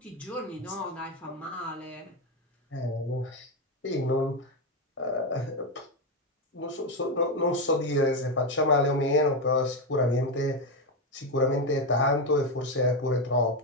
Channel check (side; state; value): both; normal; correlation 0.09